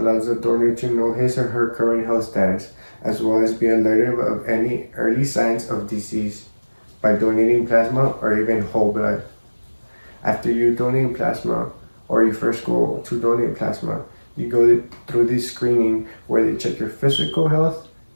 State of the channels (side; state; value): both; inverted; correlation -1.00